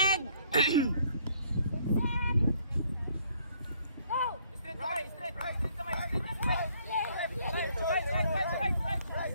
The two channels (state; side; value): inverted; both; correlation -0.64